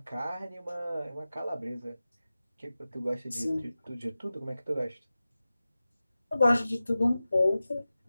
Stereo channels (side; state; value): both; inverted; correlation -0.95